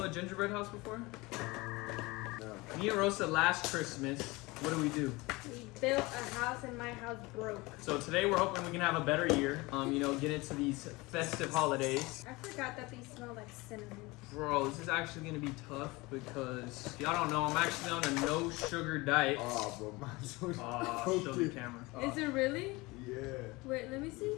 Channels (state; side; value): quieter; right; 23.1 dB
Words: a gingerbread house before? No. Me and Rosa last Christmas, what do? We built a house and my house broke. So today we're hoping we can have a better year. Get into these festive holidays. I forgot that these smell like cinnamon. Bro, this is actually gonna be tough because y'all don't know I'm actually on a no sugar diet. Oh, bro, mine's so Show the camera. Is it really? Yeah. Wait, let me